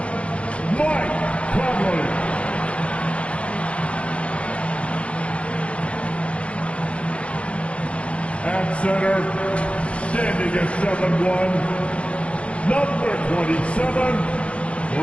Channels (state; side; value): late; right; 0.061 ms